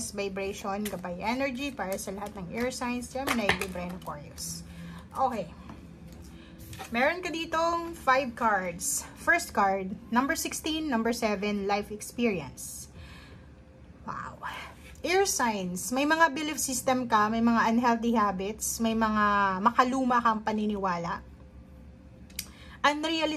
vibration, gabay energy para sa lahat ng Earth Signs, Gemini, Libra, and Aquarius. Okay. Meron ka ditong 5 cards. First card, number 16, number 7, life experience. Wow. Air signs, may mga belief system ka, may mga unhealthy habits, may mga makaluma kang paniniwala.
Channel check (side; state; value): both; identical; correlation 1.00